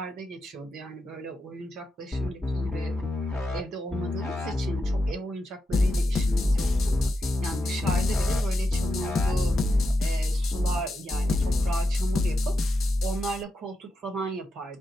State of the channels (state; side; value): normal; both; correlation 0.87